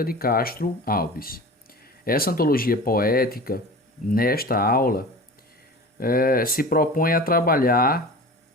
de Castro Alves. Essa antologia poética, nesta aula, se propõe a trabalhar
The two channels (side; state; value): both; normal; correlation 0.36